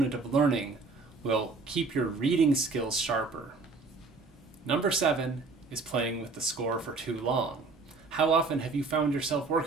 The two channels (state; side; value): quieter; left; 4.0 dB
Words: of learning will keep your reading skills sharper. Number 7 is playing with the score for too long. How often have you found yourself